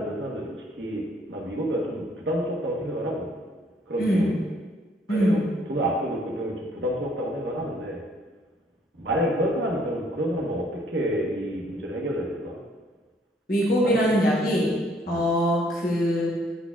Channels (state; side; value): normal; both; correlation 0.63